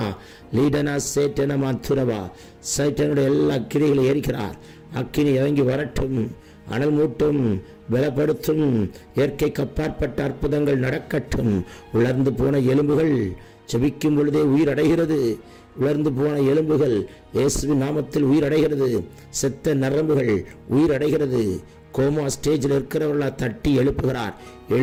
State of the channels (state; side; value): identical; both; correlation 1.00